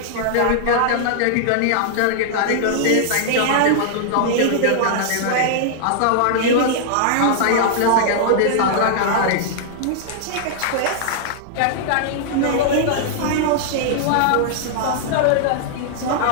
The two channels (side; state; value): both; different; correlation -0.01